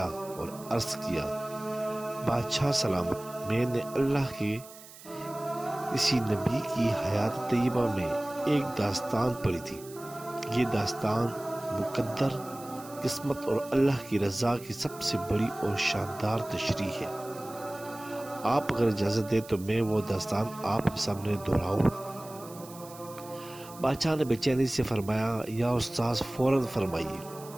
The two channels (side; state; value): right; noise; hiss, 18 dB below the sound